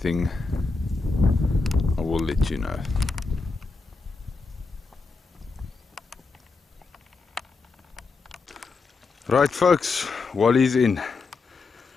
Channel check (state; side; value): quieter; right; 4.1 dB